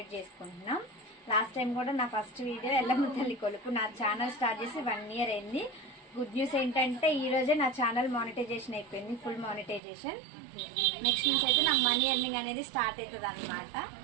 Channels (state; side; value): drops out; left; at 9.8 s